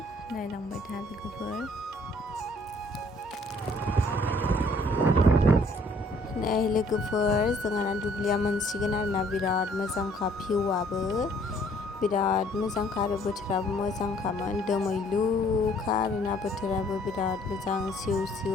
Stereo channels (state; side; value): normal; both; correlation 0.60